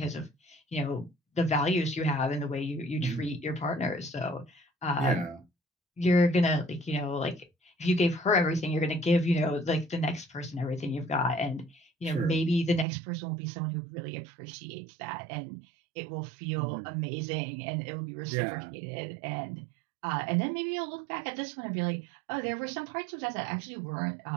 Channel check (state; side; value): drops out; left; at 12.9 s